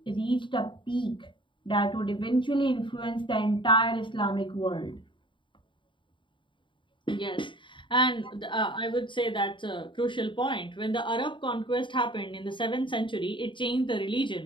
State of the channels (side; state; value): right; late; 0.24 ms